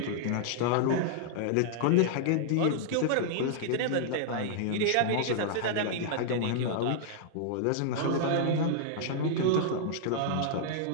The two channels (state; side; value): different; both; correlation -0.01